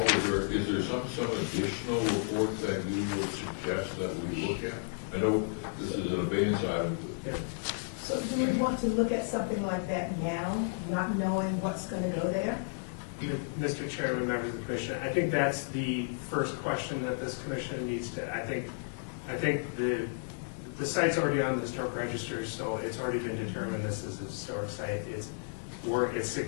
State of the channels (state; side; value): silent; right; 56 dB below the other